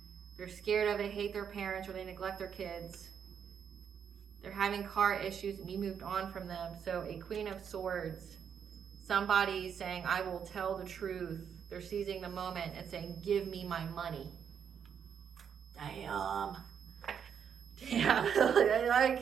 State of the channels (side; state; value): left; quieter; 7.7 dB